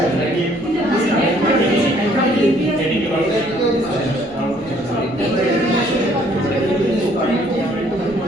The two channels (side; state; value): both; normal; correlation 0.62